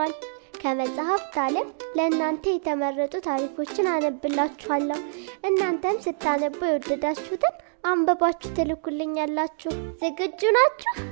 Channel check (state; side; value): silent; left; digital silence